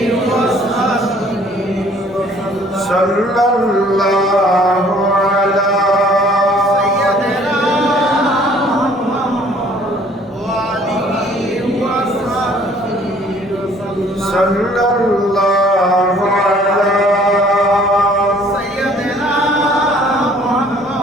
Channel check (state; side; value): normal; both; correlation 0.57